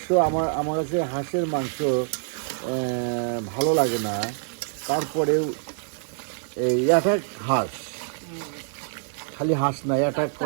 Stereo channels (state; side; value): silent; left; 61 dB below the other